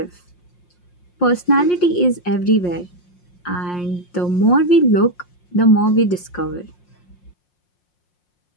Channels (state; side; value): late; right; 5.6 ms